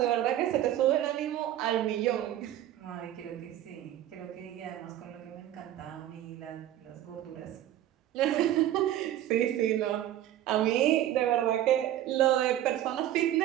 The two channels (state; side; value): quieter; left; 12.5 dB